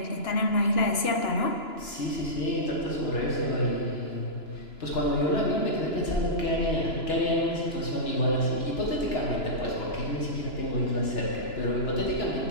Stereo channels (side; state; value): right; late; 2.9 ms